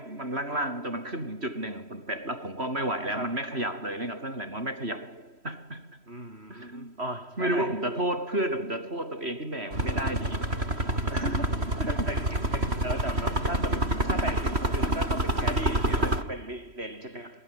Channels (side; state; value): left; late; 3.1 ms